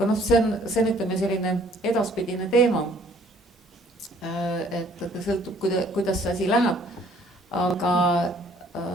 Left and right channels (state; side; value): normal; both; correlation 0.59